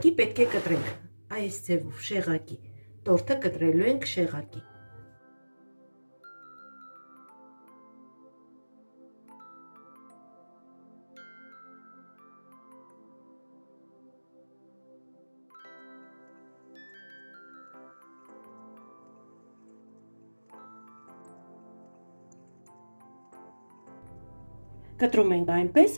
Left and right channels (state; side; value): inverted; both; correlation -1.00